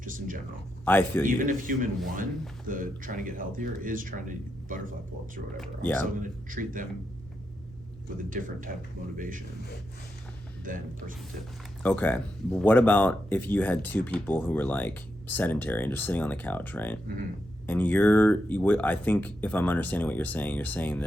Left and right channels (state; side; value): normal; both; correlation 0.85